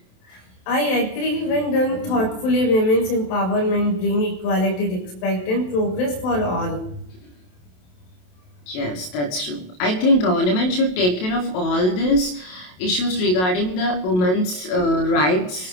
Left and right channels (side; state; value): right; late; 27 ms